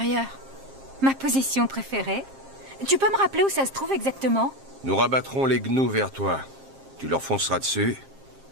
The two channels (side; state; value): left; late; 7.5 ms